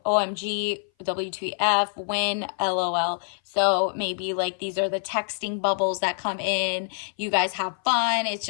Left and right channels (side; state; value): right; silent; 58 dB below the other